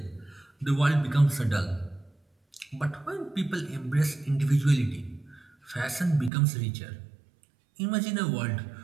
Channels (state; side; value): drops out; left; at 6.3 s